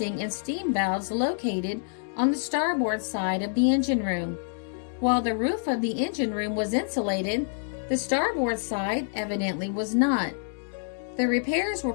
and steam valves located on the starboard side of the engine room. While the roof of the engine room was insulated, the starboard side evidently was not. The repairs were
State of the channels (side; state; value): right; silent; digital silence